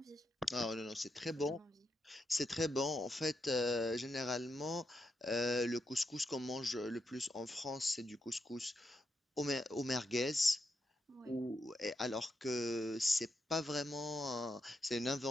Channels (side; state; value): both; normal; correlation 0.83